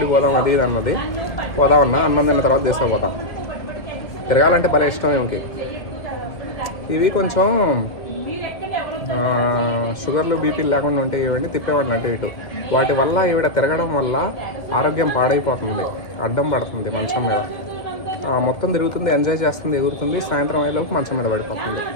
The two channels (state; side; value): late; right; 1.9 ms